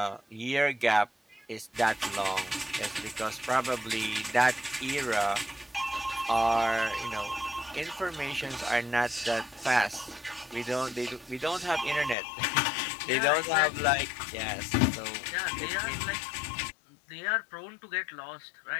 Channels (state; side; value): drops out; right; at 12.2 s